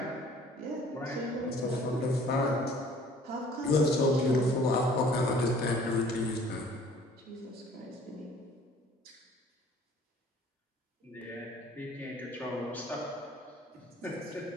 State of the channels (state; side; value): normal; both; correlation 0.53